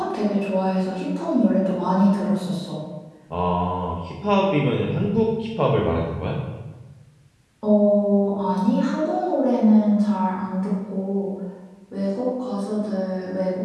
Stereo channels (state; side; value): identical; both; correlation 1.00